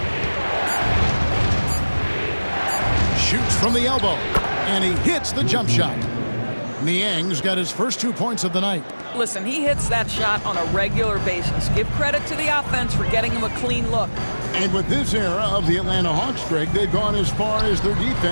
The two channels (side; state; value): both; inverted; correlation -1.00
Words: Shoots from the elbow, and he hits the jump shot. Niang's got his first 2 points of the night. Listen, he hits that shot on a regular basis. Give credit to the offense for getting him a clean look. And with this era of the Atlanta Hawks, Greg, they've gone as far as their